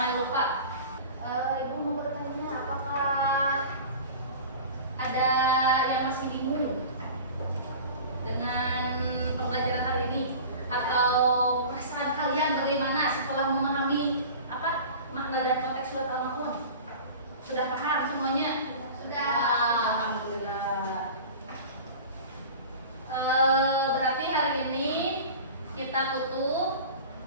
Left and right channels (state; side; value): inverted; both; correlation -0.37